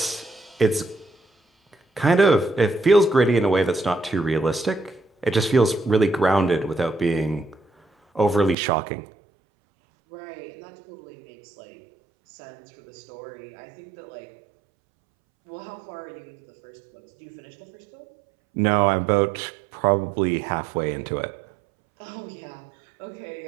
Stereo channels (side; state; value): left; drops out; at 8.6 s